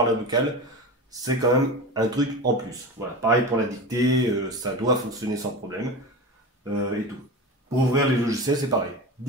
la vocale, c'est quand même un truc en plus. Voilà, pareil pour la dictée, ça doit fonctionner sans problème et tout. Pour ouvrir les logiciels, c'est pareil.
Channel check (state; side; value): normal; both; correlation 0.27